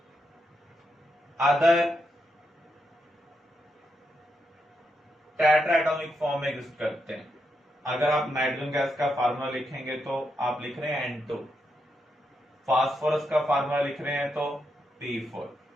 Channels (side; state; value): both; normal; correlation 0.83